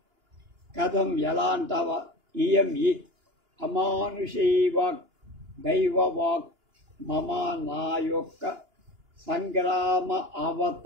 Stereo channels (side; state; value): left; late; 2.9 ms